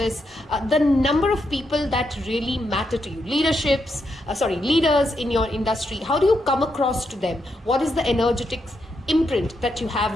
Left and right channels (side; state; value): both; normal; correlation 0.81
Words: the number of people that really matter to you, leaders in your industry, how do you come across to them? What is the energetic imprint that you